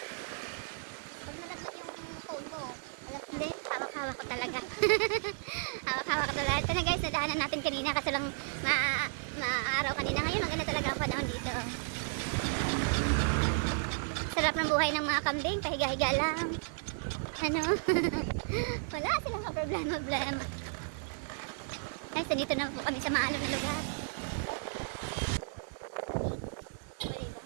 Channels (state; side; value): silent; left; 55 dB below the other